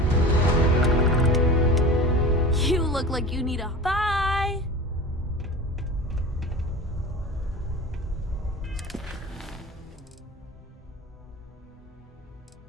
You look like you need a... Bye!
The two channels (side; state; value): both; normal; correlation 0.35